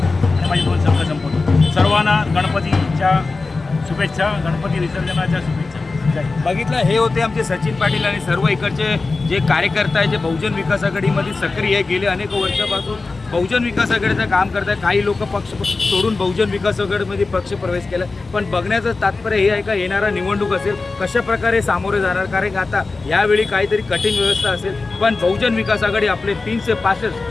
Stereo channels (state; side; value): quieter; right; 3.8 dB